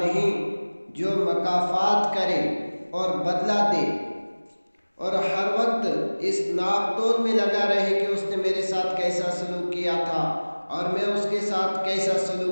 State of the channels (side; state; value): both; inverted; correlation -1.00